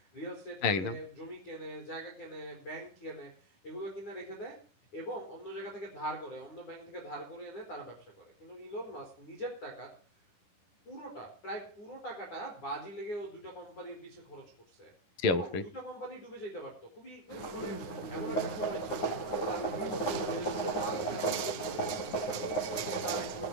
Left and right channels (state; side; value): late; right; 9.8 ms